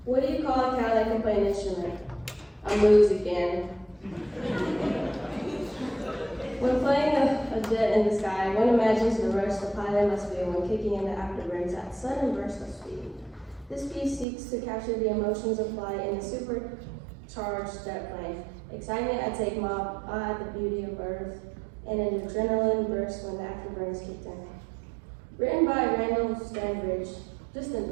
What do you call a cow that can play an instrument? A moose again. When playing a jet in the sky, one imagines the rush the pilot must feel when kicking in the afterburn's at sudden burst of speed. This piece seeks to capture the emotions of flight in a supercharged jet plane. Excitement at takeoff, awe at the beauty of Earth, and an adrenaline burst when the afterburn is kicked in. Written by Randall Stanbridge, just in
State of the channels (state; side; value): drops out; left; at 14.2 s